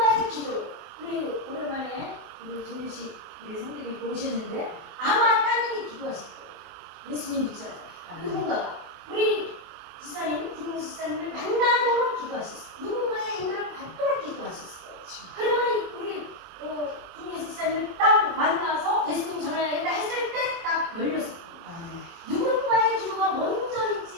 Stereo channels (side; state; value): left; late; 24 ms